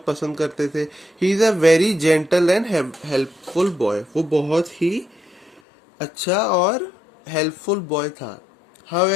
पसंद करते थे. He is a very gentle and helpful boy. वो बहुत ही अच्छा और हेल्पफुल बॉय था.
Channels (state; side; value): drops out; right; at 5.6 s